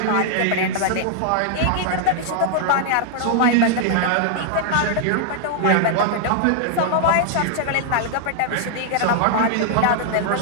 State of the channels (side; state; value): both; different; correlation -0.01